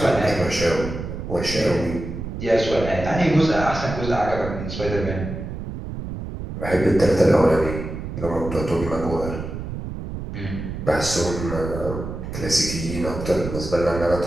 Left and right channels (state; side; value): noise; right; rumble, 7 dB below the sound